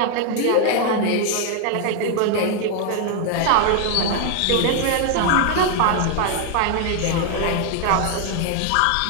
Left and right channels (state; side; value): different; both; correlation 0.00